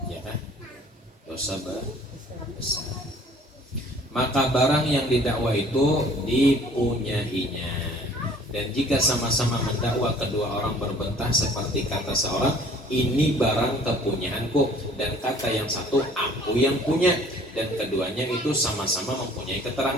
ya kan? Dosa besar. Maka barang yang didakwa itu dipunyainya. Dan jika sama-sama mendakwa kedua orang berbentah seperti kata seorang, ini barang kepunyaanku, dan kata yang satu aku yang punya, dan keduanya itu sama-sama mempunyai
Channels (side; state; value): both; normal; correlation 0.53